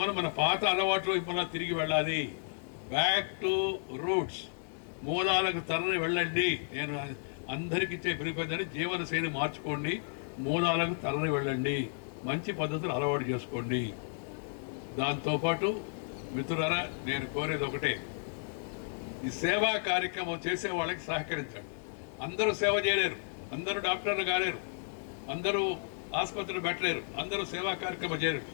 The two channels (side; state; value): right; silent; 56 dB below the other